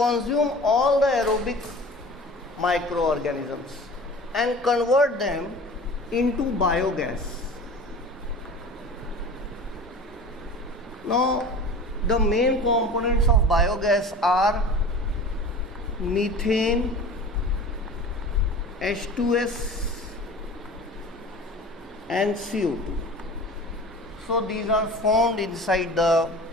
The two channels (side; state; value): both; normal; correlation 0.39